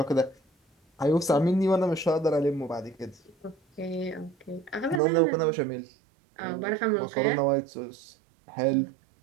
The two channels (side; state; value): left; drops out; at 5.0 s